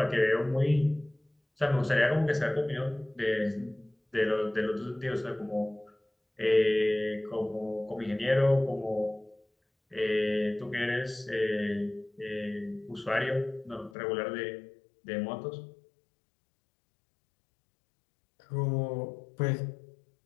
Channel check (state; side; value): drops out; right; at 13.9 s